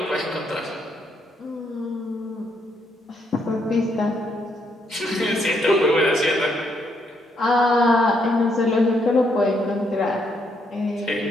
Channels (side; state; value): both; normal; correlation 0.74